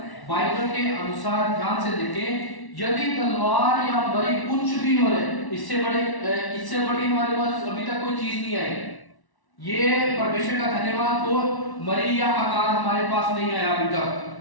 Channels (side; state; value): right; late; 1.1 ms